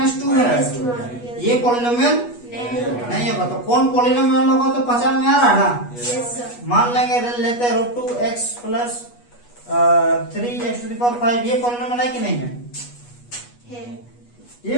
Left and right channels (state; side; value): late; right; 8.3 ms